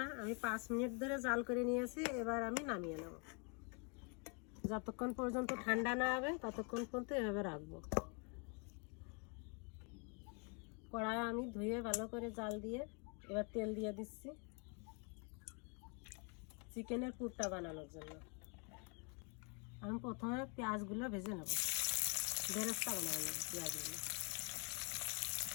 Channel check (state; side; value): quieter; right; 35.4 dB